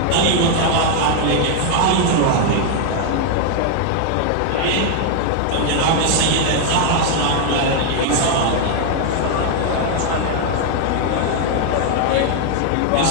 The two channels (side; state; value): both; different; correlation 0.00